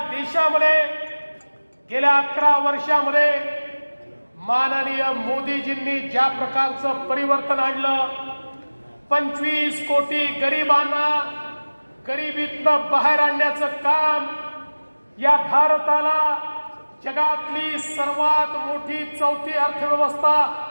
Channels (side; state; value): both; inverted; correlation -1.00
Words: देशामध्ये गेल्या 11 वर्षामध्ये माननीय मोदीजींनी ज्या प्रकारचं परिवर्तन आणलं, 25 कोटी गरिबांना गरिबीतनं बाहेर आणण्याचं काम, या भारताला जगातली सर्वात मोठी 4थी अर्थव्यवस्था